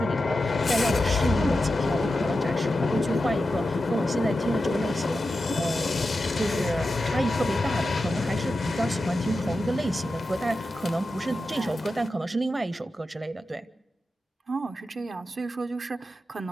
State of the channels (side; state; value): both; normal; correlation 0.91